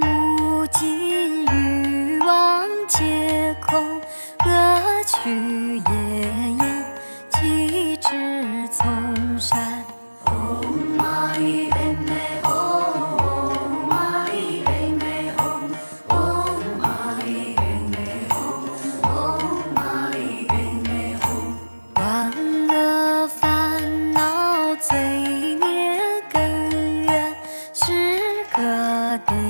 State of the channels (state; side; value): inverted; both; correlation -1.00